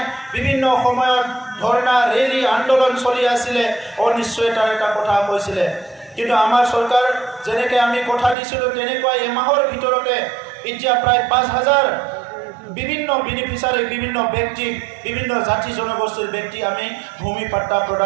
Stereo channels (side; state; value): left; drops out; at 8.3 s